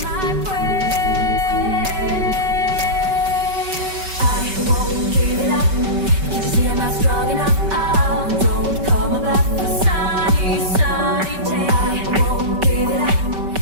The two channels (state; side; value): late; left; 5.2 ms